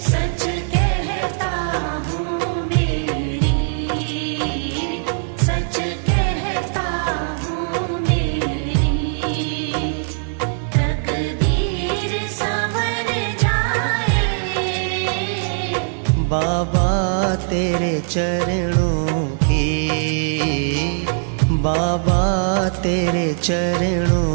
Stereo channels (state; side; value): silent; left; digital silence